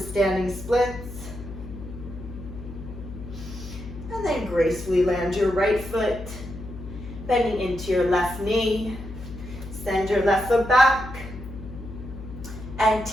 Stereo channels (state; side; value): noise; left; hum, 12 dB below the sound